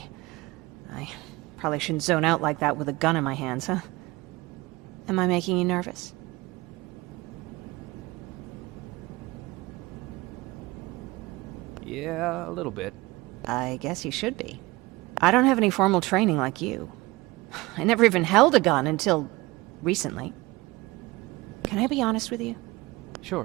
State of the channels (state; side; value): quieter; left; 21.6 dB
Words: I probably shouldn't zone out like that with a gun in my hands, huh? Am I making you nervous? Yeah, a little bit. I guess you should be. I don't have any formal training like you. I never even held a gun until recently. Can I be honest with you?